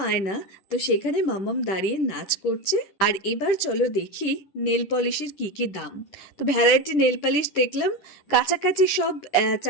আয়না, তো সেখানে মাম্মাম দাঁড়িয়ে নাচ করছে। আর এবার চলো দেখি নেল পলিশের কি কি দাম। তো ভ্যারাইটি নেল পলিশ দেখলাম, কাছাকাছি সব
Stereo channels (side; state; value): right; late; 10 ms